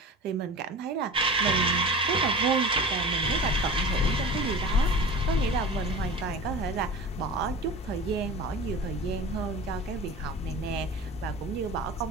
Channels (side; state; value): both; normal; correlation 0.34